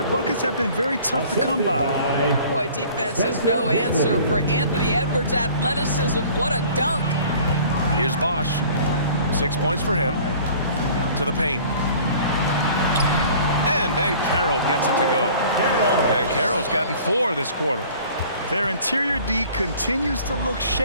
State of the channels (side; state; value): both; inverted; correlation -0.49